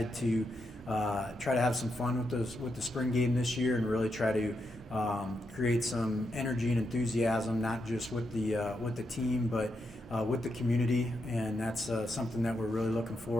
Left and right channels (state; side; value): normal; both; correlation 0.83